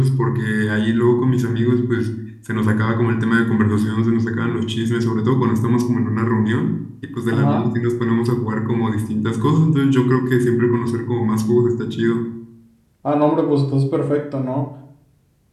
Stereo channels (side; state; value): both; identical; correlation 1.00